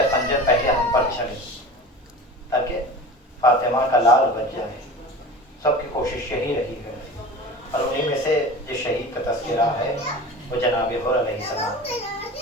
خنجر پہلے ہم پر چڑھے تاکہ فاطمہ کا لال بچ جائے. سب کی کوشش یہی رہی ہے، اور انہیں میں سے جو شہید کا تذکرہ ہے وہ جناب حر علیہ السلام.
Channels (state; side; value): normal; both; correlation 0.36